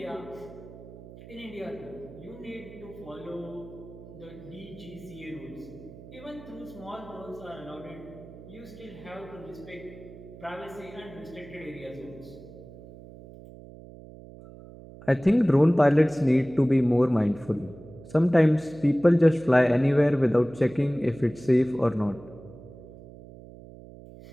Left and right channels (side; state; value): right; noise; hum, 17 dB below the sound